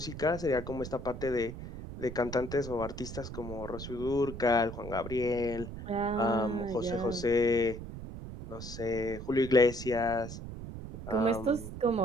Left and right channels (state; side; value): noise; right; rumble, 10 dB below the sound